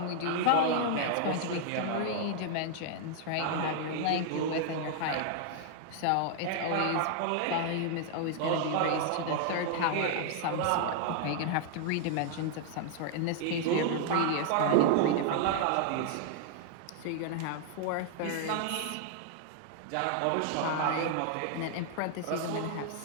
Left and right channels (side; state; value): both; different; correlation 0.00